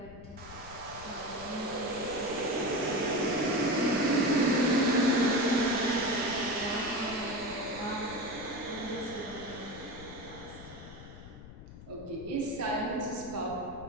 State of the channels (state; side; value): noise; left; rumble, 15 dB below the sound